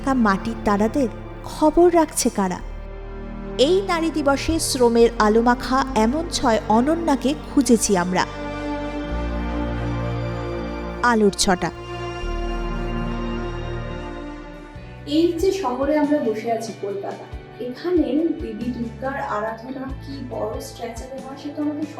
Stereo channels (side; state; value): both; identical; correlation 1.00